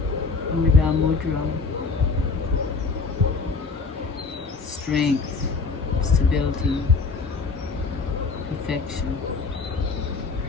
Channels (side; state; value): right; quieter; 4.4 dB